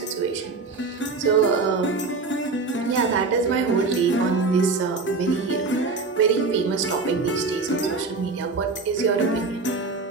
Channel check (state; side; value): quieter; left; 4.0 dB